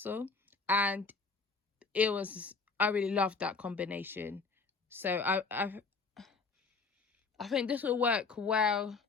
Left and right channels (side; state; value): right; quieter; 4.5 dB